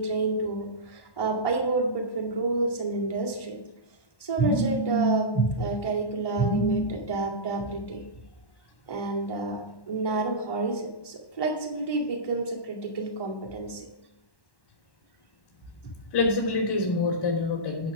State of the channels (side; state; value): right; late; 1.1 ms